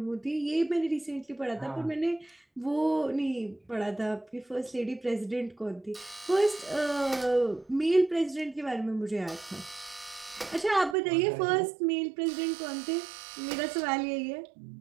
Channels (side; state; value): left; drops out; at 11.0 s